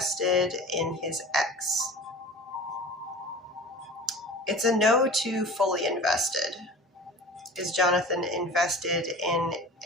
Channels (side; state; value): both; normal; correlation 0.39